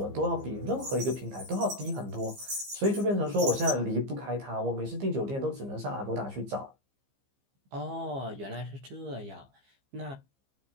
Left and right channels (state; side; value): late; left; 15 ms